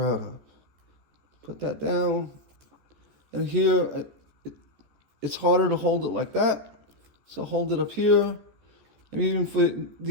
of. Put that down, and here, it's harder to hold it like that, so hold it up here. And even for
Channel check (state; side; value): late; left; 14 ms